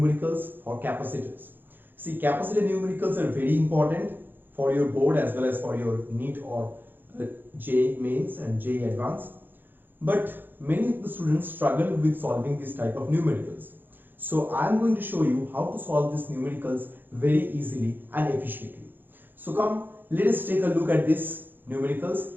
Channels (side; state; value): left; late; 0.093 ms